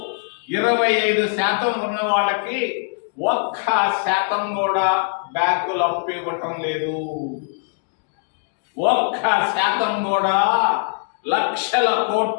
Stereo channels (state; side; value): silent; right; 65 dB below the other